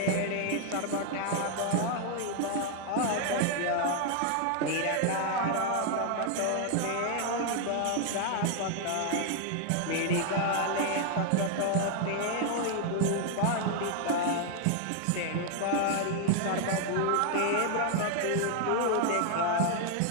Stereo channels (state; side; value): different; both; correlation 0.00